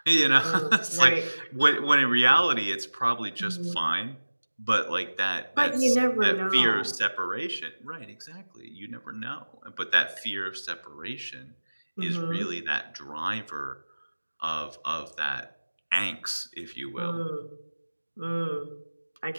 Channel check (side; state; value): both; inverted; correlation -1.00